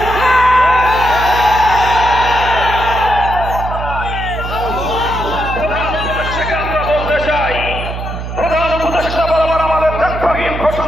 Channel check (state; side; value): noise; right; hum, 6 dB below the sound